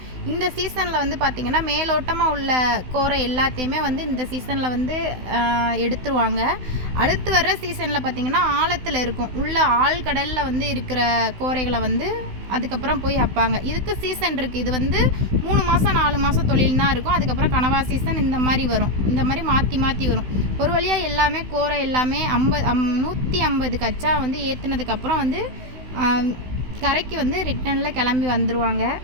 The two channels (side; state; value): left; late; 16 ms